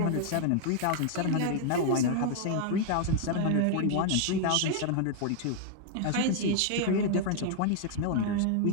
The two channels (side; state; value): both; different; correlation 0.00